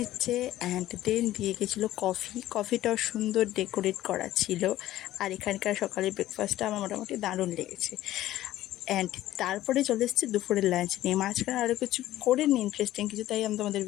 অ্যান্ড দেন দিয়ে গেছিলো কফিটাও সুন্দর ডেকোরেট করা ছিল। আর এখানকার সকালের ব্রেকফাস্টটা আমার মোটামুটি দারুণ লেগেছে। অ্যান্ড তারপরে চলে এসেছি দুপুরের লাঞ্চ নিয়ে। মাঝখানে আরও কিছু করিনি ইন্টারেস্টিং কিছু, তাই আমি তোমাদের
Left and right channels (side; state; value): right; quieter; 14.4 dB